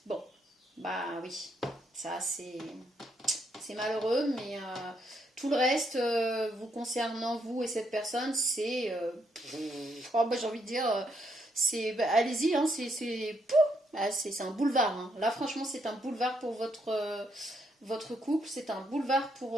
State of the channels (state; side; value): normal; both; correlation 0.75